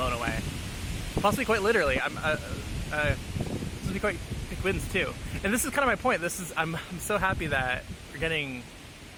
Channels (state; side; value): identical; both; correlation 1.00